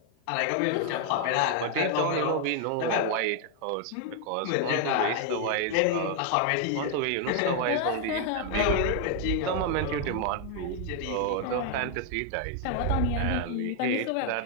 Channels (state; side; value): different; both; correlation 0.00